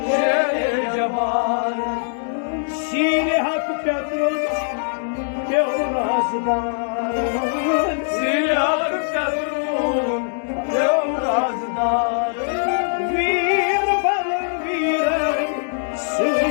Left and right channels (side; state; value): right; silent; digital silence